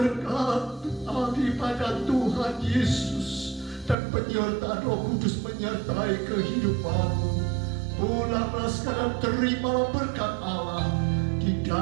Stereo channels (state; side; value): drops out; left; at 4.0 s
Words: daripada Tuhan Yesus, dan penyertaan Roh Kudus menyertai kehidupanmu. Pulanglah sekarang, terimalah berkat Allah di